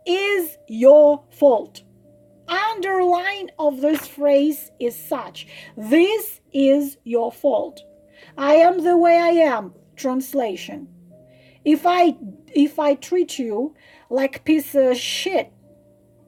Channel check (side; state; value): both; identical; correlation 1.00